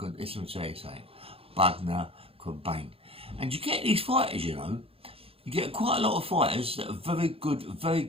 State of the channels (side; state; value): left; late; 0.27 ms